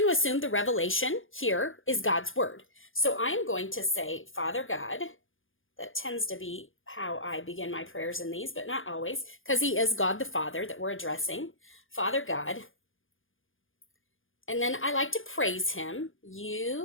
to assume the revelation here is God's word. So I am going to say, Father God. That tends to be how I begin my prayers in these, but not always, because he is God the Father that we're addressing. Father God. And then I like to praise him.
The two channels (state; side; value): late; right; 0.58 ms